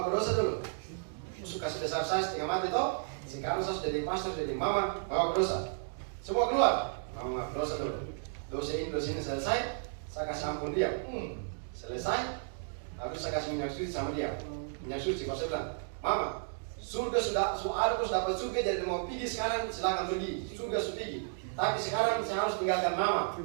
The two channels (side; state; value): left; silent; digital silence